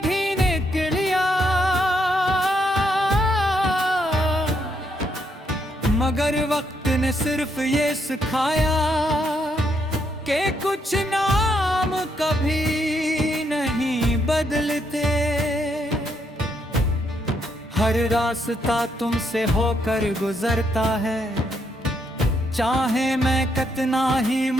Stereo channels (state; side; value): normal; both; correlation 0.76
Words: कर लिया, मगर वक्त ने सिर्फ ये सिखाया कि कुछ नाम कभी नहीं बदलते। हर रास्ता तुमसे होकर गुजरता है, चाहे मैं कितना ही